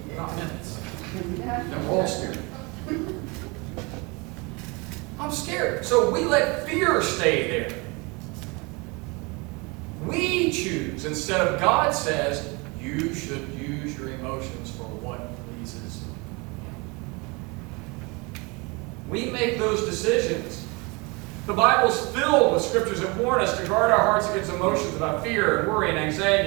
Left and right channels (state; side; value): quieter; left; 28.0 dB